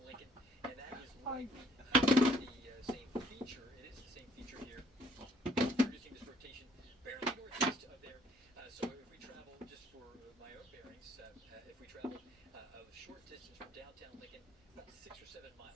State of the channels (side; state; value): both; normal; correlation 0.62